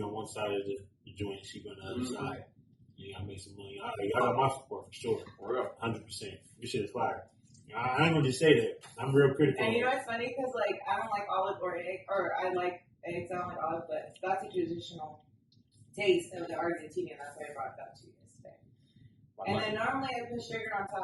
one side of the joint, she on the other side. Yeah, I make some money. Y'all got my support for sure. 100%. This shit is fire. I ain't gonna just say that. I'm real critical. And you know what's funny? Because I don't like olive or egg, or I like eggs. I don't like olive, but that's a traditional taste of the Argentinian. That's why I brought that to you today. And then normally I put sugar on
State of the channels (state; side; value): identical; both; correlation 1.00